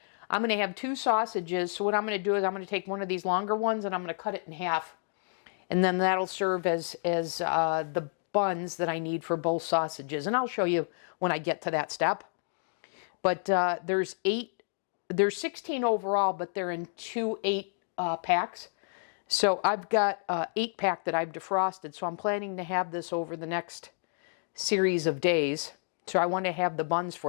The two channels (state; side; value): silent; right; digital silence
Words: I'm going to have 2 sausages. So what I'm going to do is I'm going to take one of these longer ones and I'm going to cut it in half. And then that'll serve as the buns that I need for both sausages. And I'll show you when I get to that step. But there's 16 overall, but they're in 2 8-packs. So I've got an 8-pack that I've defrosted. So I'm planning to have this over the next series of days. So I want to have the buns